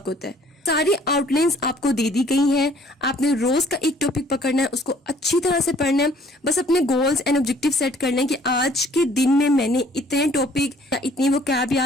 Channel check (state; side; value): normal; both; correlation 0.58